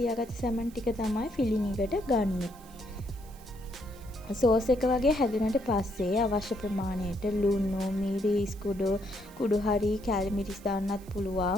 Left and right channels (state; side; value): noise; right; hiss, 24 dB below the sound